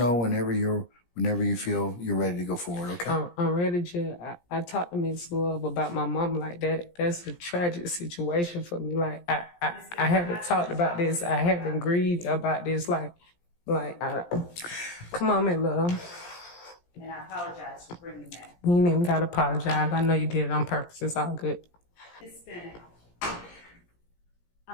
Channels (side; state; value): right; late; 17 ms